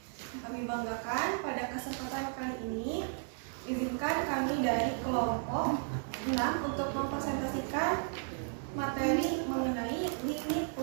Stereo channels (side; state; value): left; silent; 55 dB below the other